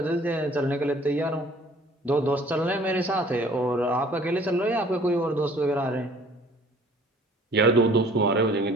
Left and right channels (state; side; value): normal; both; correlation 0.53